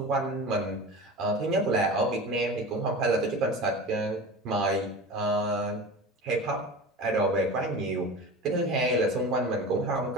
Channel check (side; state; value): both; normal; correlation 0.32